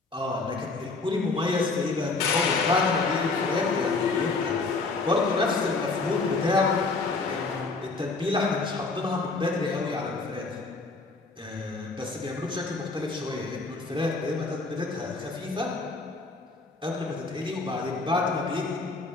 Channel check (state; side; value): quieter; right; 3.7 dB